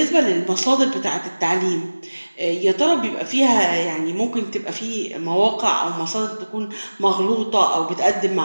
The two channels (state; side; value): inverted; both; correlation -1.00